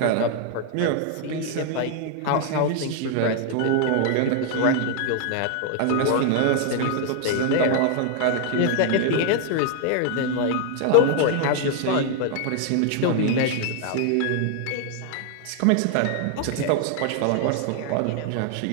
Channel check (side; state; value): both; different; correlation 0.00